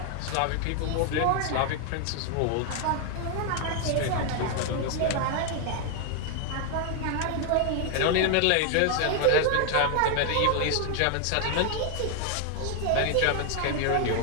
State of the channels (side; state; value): both; different; correlation 0.00